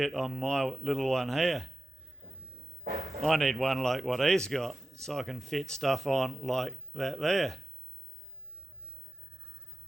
on my little one here. I need one like what he's got, so I can fit stuff on like that there.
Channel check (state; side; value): normal; both; correlation 0.93